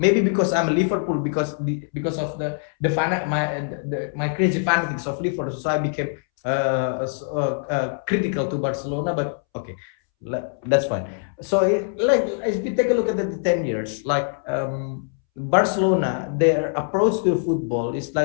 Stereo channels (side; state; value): right; silent; 63 dB below the other